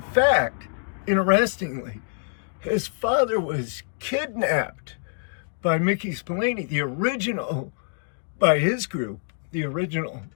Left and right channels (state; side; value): silent; right; digital silence